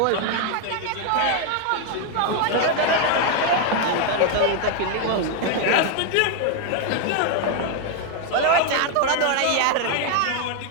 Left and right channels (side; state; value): both; different; correlation 0.01